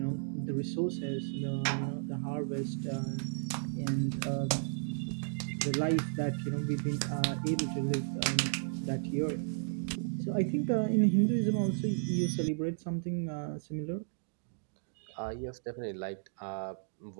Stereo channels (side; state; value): left; silent; digital silence